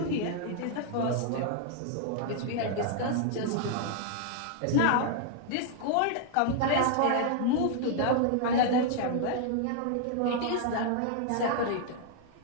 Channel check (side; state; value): both; different; correlation 0.00